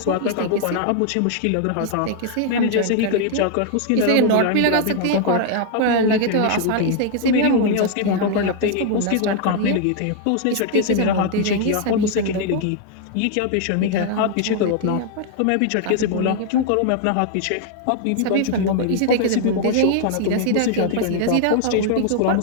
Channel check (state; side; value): different; both; correlation 0.00